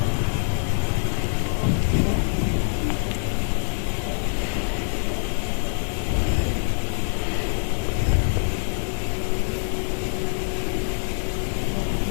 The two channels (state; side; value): silent; right; digital silence